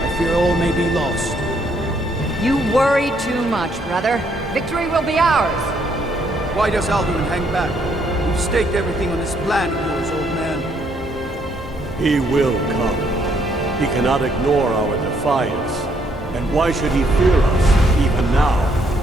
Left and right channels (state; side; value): normal; both; correlation 0.70